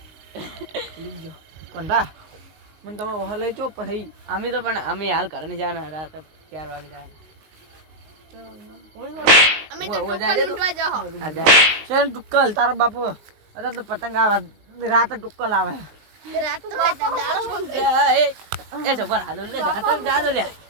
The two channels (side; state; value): left; late; 19 ms